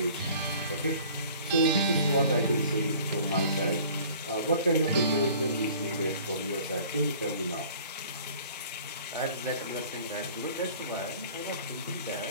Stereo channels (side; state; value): both; inverted; correlation -0.49